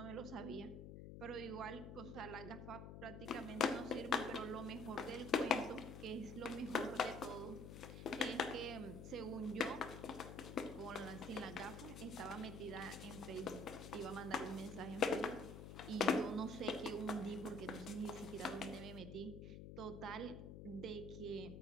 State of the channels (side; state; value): left; noise; hum, 10 dB below the sound